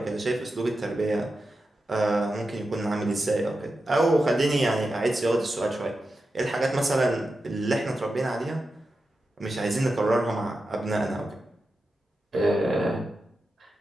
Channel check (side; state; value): both; normal; correlation 0.90